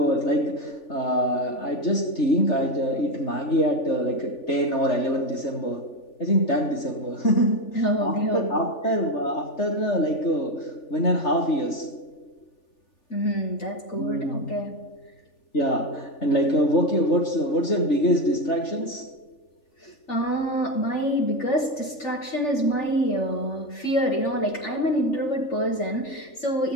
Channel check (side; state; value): right; late; 3.4 ms